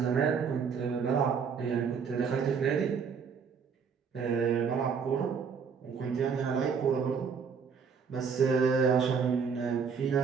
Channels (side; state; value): left; quieter; 6.2 dB